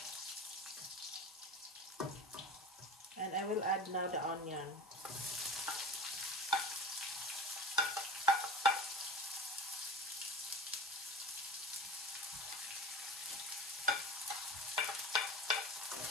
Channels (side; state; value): both; normal; correlation 0.32